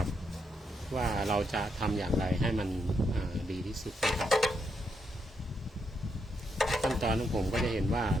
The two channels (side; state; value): both; normal; correlation 0.80